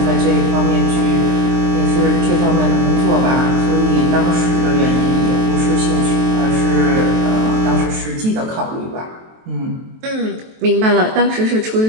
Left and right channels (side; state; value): left; late; 23 ms